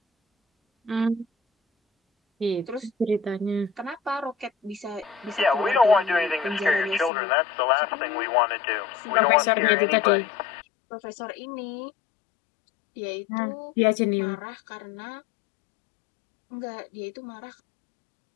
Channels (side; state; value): right; drops out; at 7.1 s